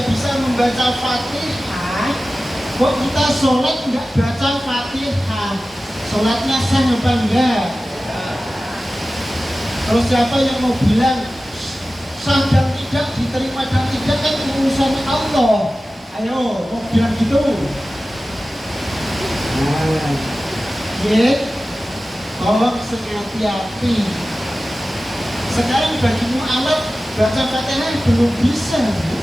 bisa membaca Fatihah, kok kita sholat nggak baca Fatihah, sholatnya sah apa enggak? Terus siapa yang mau bilang sah dan tidak, diterima dan tidak, kan urusan Allah. Ayo, mau bilang gitu? Nah, ya, tolong hati-hati. Sekarang bagi mu'alaf baca Fatihah belum bisa,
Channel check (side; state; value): both; normal; correlation 0.95